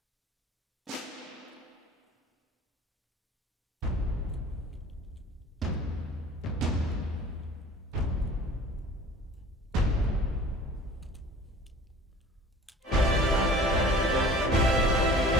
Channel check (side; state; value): both; normal; correlation 0.46